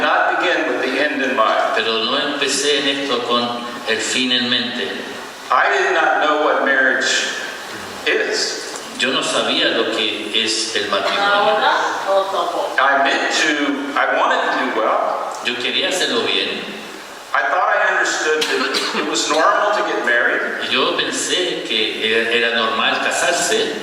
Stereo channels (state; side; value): identical; both; correlation 1.00